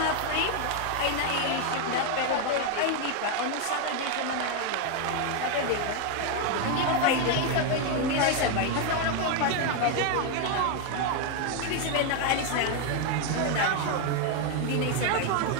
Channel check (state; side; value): different; both; correlation 0.01